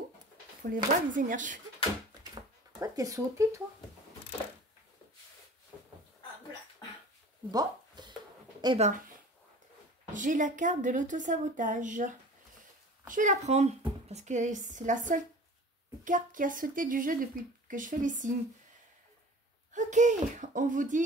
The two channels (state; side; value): normal; both; correlation 0.42